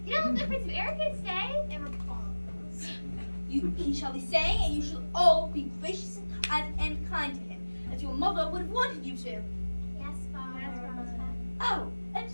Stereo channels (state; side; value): inverted; both; correlation -1.00